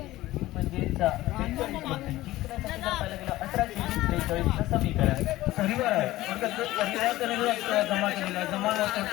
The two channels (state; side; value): quieter; right; 16.7 dB